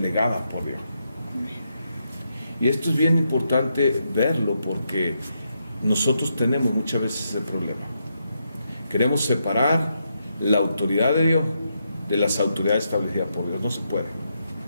por Dios. Y esto es bien importante verlo porque nosotros tenemos muchas veces ese problema. Queremos separar la autoridad de Dios de las autoridades establecidas por Dios. No se puede.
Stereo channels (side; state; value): both; inverted; correlation -0.81